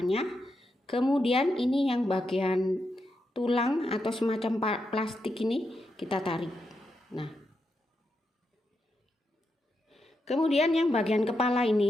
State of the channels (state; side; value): normal; both; correlation 0.85